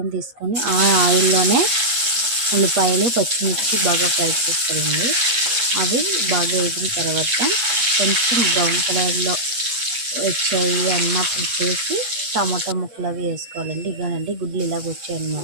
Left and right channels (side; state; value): left; late; 8.3 ms